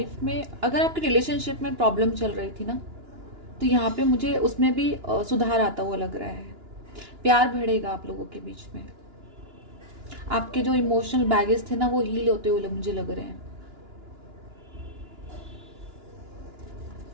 में, अगर आपके रिलेशनशिप में प्रॉब्लम चल रही थी ना, तो यहाँ पे मुझे उसमें भी सुधार आता हुआ लग रहा है। प्यार बढ़ेगा आप लोगों के बीच में, आपके जो इमोशनल बैगेज थे ना वो हील होते हुए मुझे लग रहे हैं।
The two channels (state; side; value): late; left; 2.9 ms